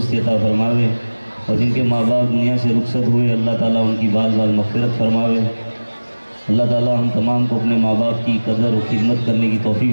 अता फरमावे, और जिनके माँ बाप दुनिया से रुखसत हुए अल्लाह ताला उनकी बाल बाल मग़फ़िरत फरमावे। अल्लाह ताला हम तमाम को अपने माँ बाप की कदर और खिदमत करने की तौफ़ीक़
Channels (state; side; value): inverted; both; correlation -1.00